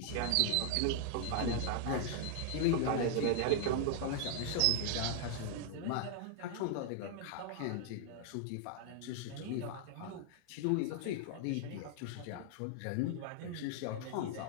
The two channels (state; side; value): different; both; correlation -0.01